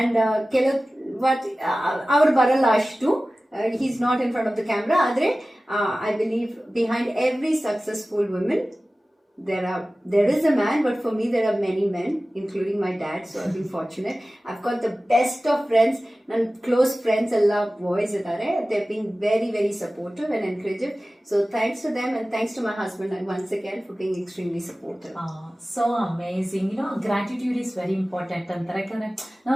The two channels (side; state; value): both; normal; correlation 0.96